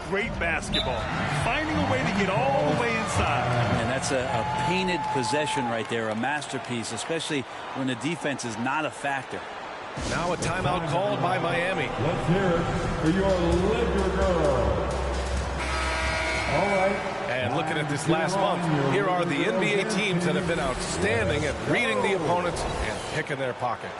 great basketball. Finding a way to get all the way inside. And that's a painted possession right there, a masterpiece, especially when the defense is not a factor. Now a timeout called by Miami. Let's hear it for your Laker girl. All right. And looking at this last month, here are the NBA teams that have been outstanding at reading the opponents and picking their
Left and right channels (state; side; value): identical; both; correlation 1.00